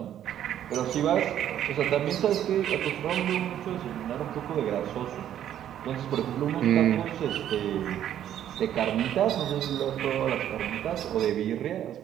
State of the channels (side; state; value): left; quieter; 10.8 dB